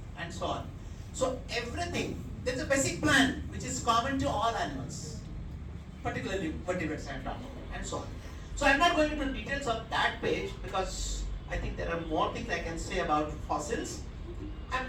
and so on. So everything, there's a basic plan which is common to all animals, particularly vertebrates and so on. So I'm not going into details of that page because I think there are more things I can say about fossils. I'm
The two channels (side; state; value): both; identical; correlation 1.00